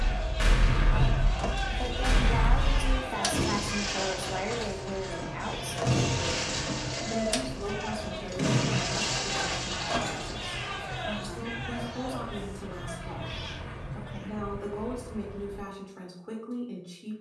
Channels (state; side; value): identical; both; correlation 1.00